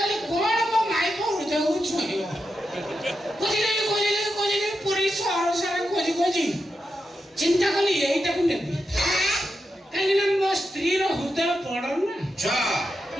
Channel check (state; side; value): normal; both; correlation 0.87